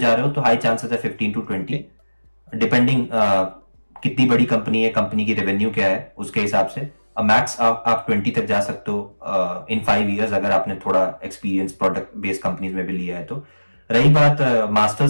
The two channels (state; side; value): inverted; both; correlation -1.00